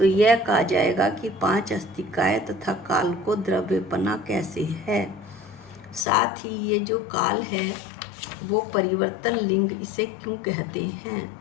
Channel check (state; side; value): drops out; right; at 6.1 s